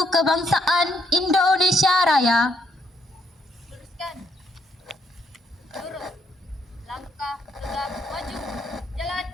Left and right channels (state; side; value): normal; both; correlation 0.73